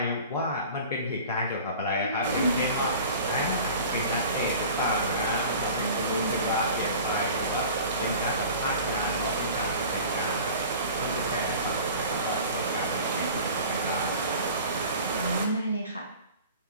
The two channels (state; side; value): inverted; both; correlation -0.42